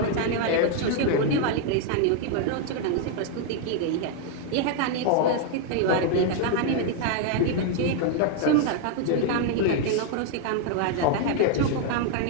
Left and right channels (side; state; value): both; different; correlation 0.00